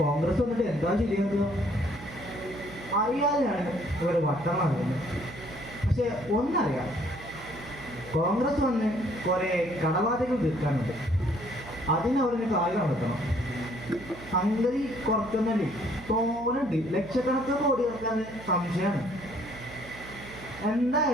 വന്നിട്ട് എന്താ ശരിയാക്കുക? അറിയാതെയാണ് ഇവർ വട്ടം നടക്കുന്നത്. പക്ഷെ ഒന്നറിയാം, കോൺഗ്രസ് വന്ന് കുറെ കടബാധകൾ തീർക്കാനുണ്ട്. അതിനവരിന് കാര്യം നടത്തണം. സംഗതി കുറച്ചൊന്നല്ലേ, തോന്നുന്നുണ്ട്. ലക്ഷക്കണക്കിന് കോടി ഇറക്കാൻ സംശയമാണ്.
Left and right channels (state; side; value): noise; right; hum, 16 dB below the sound